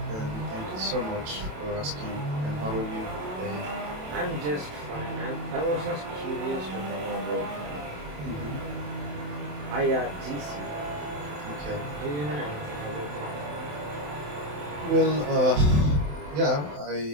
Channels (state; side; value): late; left; 27 ms